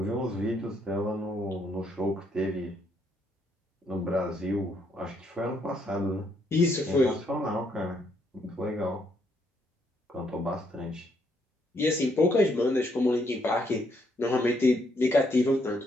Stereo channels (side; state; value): both; normal; correlation 0.73